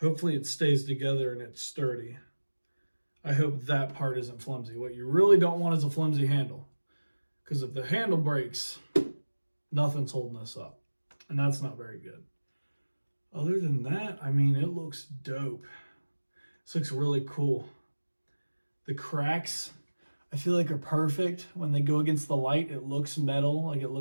Hopefully it stays together and it's sturdy. I hope that part isn't flimsy. What you really don't want is a flimsy handle. Because if the handle breaks, nothing's holding this up. And that's not very good. Other than that, I mean, it looks dope. This looks really cool. The cracks, I feel like are perfect. When they go against the light, it looks metal, like it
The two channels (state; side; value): inverted; both; correlation -1.00